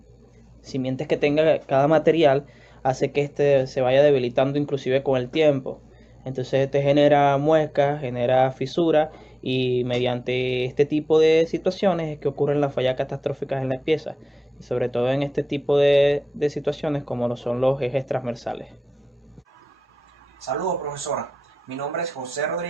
simientes que tenga cada material hace que este se vaya debilitando inclusive con el tiempo. Entonces este genera muescas, genera fisuras, y mediante este tipo de situaciones es que ocurren las fallas catastróficas en las piezas, y sobre todo en este tipo de situaciones como lo son los ejes transversales. Saludos, profesora. Mi nombre es José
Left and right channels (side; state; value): both; normal; correlation 0.96